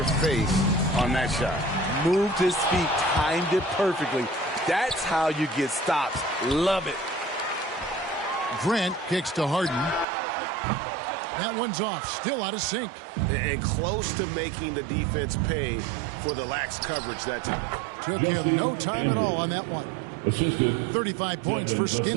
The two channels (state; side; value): drops out; left; at 10.1 s